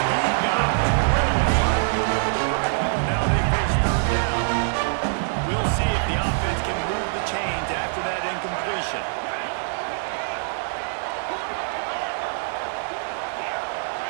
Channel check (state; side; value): silent; left; digital silence